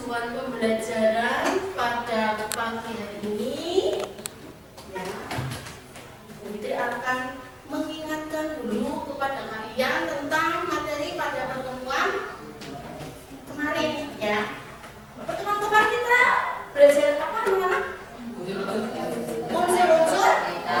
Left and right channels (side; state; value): both; identical; correlation 1.00